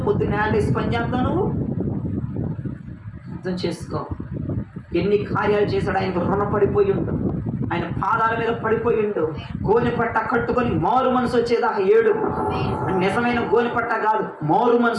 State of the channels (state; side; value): identical; both; correlation 1.00